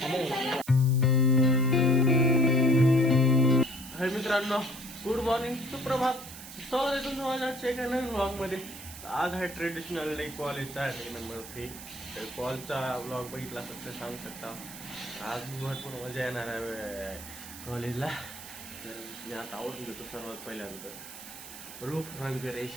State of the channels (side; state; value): right; noise; hiss, 13 dB below the sound